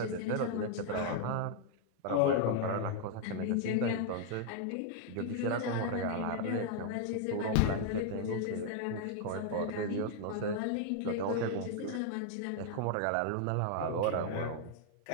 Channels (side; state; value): both; different; correlation 0.00